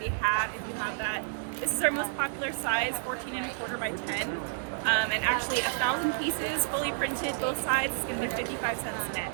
a hat if you have that. This is our most popular size, 14¼ by 10. And actually 1,000 pieces, fully printed, both sides. It's gonna be 55 cents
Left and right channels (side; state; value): left; silent; digital silence